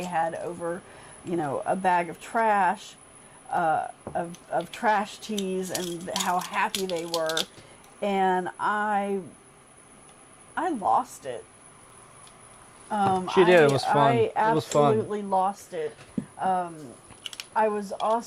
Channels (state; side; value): identical; both; correlation 1.00